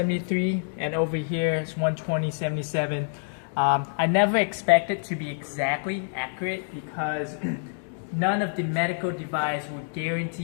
and over here it's 120.77. I never expected to be exactly accurate because none of the medical device would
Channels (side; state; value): right; silent; digital silence